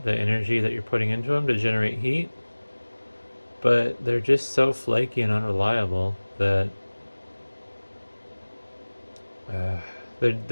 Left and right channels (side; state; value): both; inverted; correlation -1.00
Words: the energy that you're putting into them to generate heat. But they're just so flaky and unreliable that